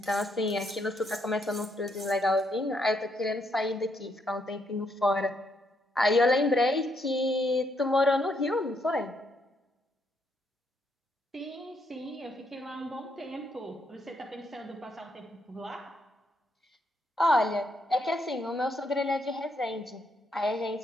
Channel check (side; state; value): both; normal; correlation 0.75